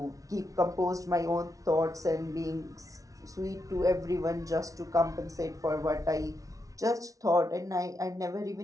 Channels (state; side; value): late; left; 0.17 ms